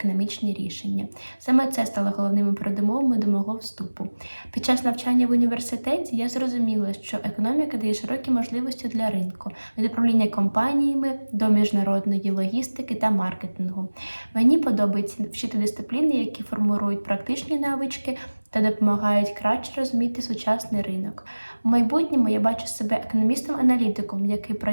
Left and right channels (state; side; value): inverted; both; correlation -1.00